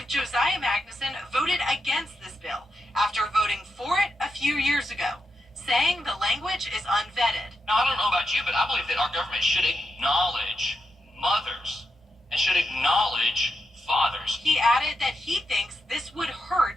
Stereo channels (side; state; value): both; normal; correlation 0.85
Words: Josiah Magnuson voted against this bill after voting for it a few years ago, saying the language is unvetted. Now, I don't know about you, but I believe that our government should acknowledge mothers and should acknowledge fathers. He added that he thinks this would hurt